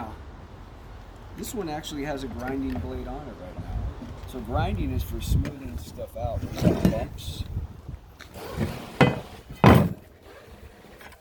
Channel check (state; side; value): identical; both; correlation 1.00